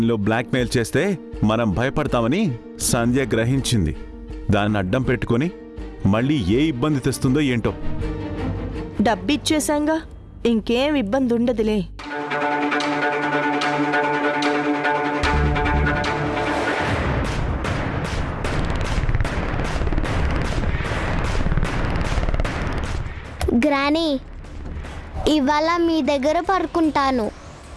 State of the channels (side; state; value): both; identical; correlation 1.00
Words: బ్లాక్మెయిల్ చేస్తే మనం భయపడతామని సంధ్య గ్రహించింది. దాన్ని అడ్డం పెట్టుకొని మళ్ళీ ఏ ఇబ్బంది తెస్తుందో ఏంటో. డబ్బిచ్చేశాంగా, ఇంకేం ఇబ్బంది ఉండదులే. గ్రానీ, ఇవాళ మీ దగ్గర పడుకుంటాను.